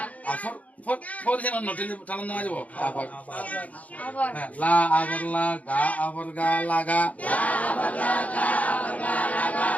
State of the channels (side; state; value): right; late; 0.071 ms